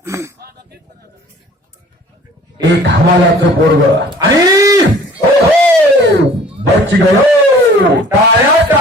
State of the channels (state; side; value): normal; both; correlation 0.50